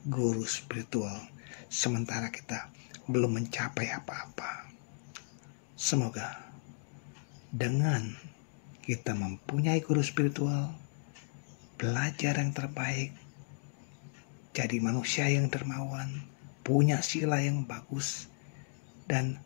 guru spiritual, sementara kita belum mencapai apa-apa. Semoga dengan kita mempunyai guru spiritual, belajar yang terbaik, jadi manusia yang dermawan, punya sila yang bagus, dan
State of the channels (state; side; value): silent; right; digital silence